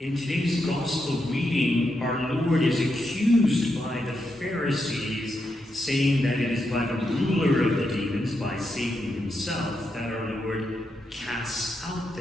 today's gospel reading, our Lord is accused by the Pharisees, saying that it is by the ruler of the demons, by Satan himself, that our Lord casts out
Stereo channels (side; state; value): both; normal; correlation 0.84